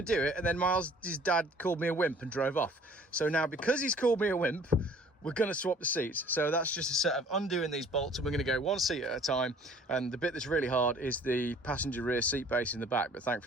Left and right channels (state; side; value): normal; both; correlation 0.53